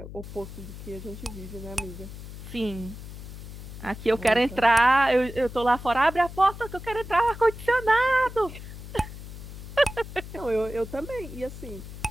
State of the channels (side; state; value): left; noise; hum, 12 dB below the sound